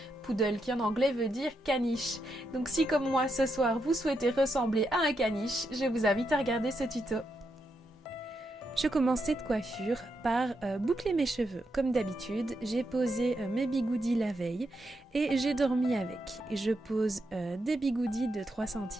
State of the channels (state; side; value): normal; both; correlation 0.82